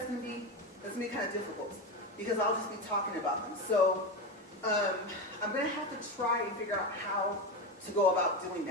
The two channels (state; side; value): normal; both; correlation 0.17